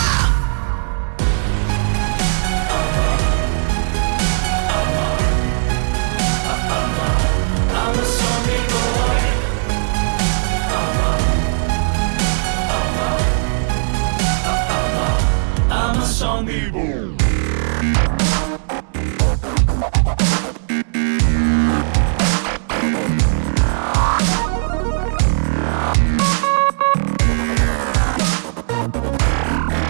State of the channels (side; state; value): left; silent; 67 dB below the other